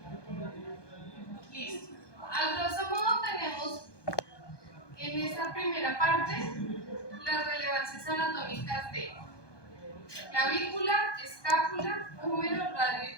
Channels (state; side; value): late; right; 1.2 ms